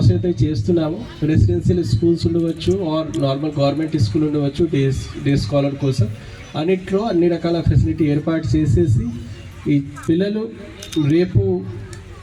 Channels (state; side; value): identical; both; correlation 1.00